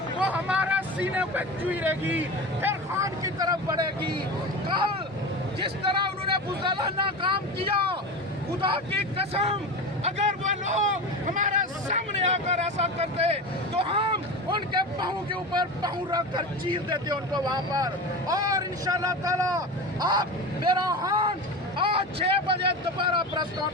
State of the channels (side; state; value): both; normal; correlation 0.27